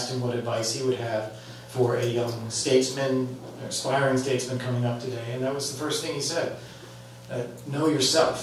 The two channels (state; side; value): identical; both; correlation 1.00